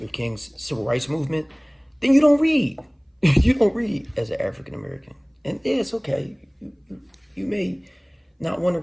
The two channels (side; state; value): both; identical; correlation 1.00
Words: King's civil rights movement, then you don't read. You don't read as an African American. And yeah, it's okay. You may not want to